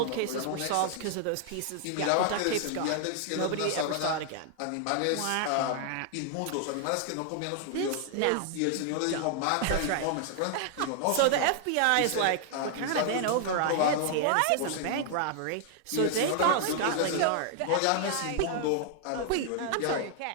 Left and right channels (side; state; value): both; different; correlation 0.00